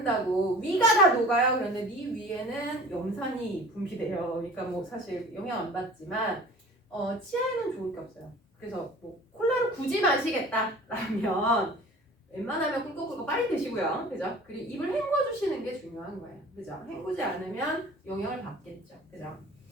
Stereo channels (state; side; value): normal; both; correlation 0.44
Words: 위가 다 녹아요. 그런데 네 위에는 염산이 분비돼요. 그러니까 뭐 사실 영향 안 받지만 치아에는 좋을 게 없어요. 그래서 뭐 콜라를 굳이 마시겠다라면 웬만하면 꿀꺽꿀꺽 빨리 드시고요. 그죠? 그리고 입을 헹궈주시는 게 중요한 거예요. 그죠? 헹구지 않으면 영향을 받겠죠. 그죠?